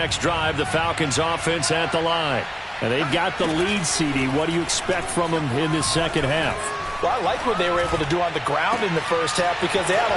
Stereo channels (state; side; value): identical; both; correlation 1.00